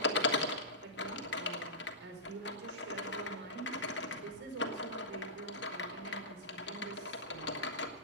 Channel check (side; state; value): both; normal; correlation -0.15